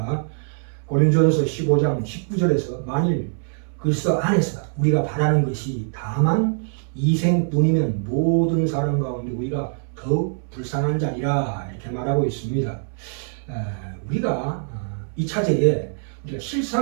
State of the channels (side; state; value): left; silent; 62 dB below the other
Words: 고린도전서 15장 19절에서 만일 그리스도 안에서 우리가 바라는 것이 다만 이생뿐이면 모든 사람 가운데 우리가 더욱 불쌍한 자리라 이렇게 말하고 있습니다. 우리가 이 차제에 우리가